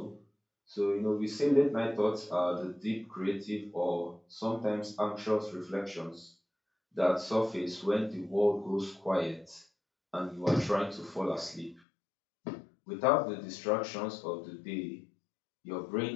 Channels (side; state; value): right; drops out; at 11.8 s